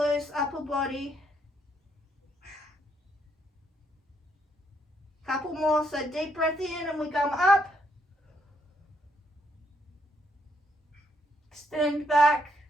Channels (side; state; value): both; normal; correlation 0.73